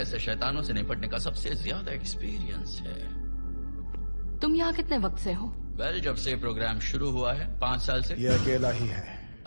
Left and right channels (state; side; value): inverted; both; correlation -1.00